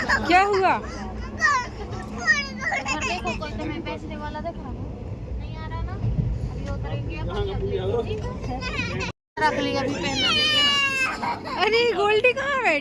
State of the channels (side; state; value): both; identical; correlation 1.00